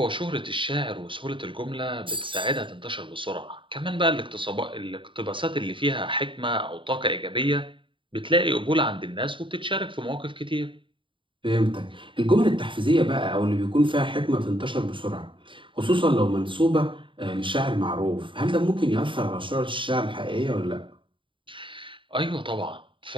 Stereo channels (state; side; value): late; left; 0.25 ms